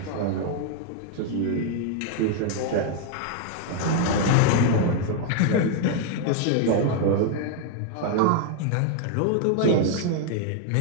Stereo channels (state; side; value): different; both; correlation 0.00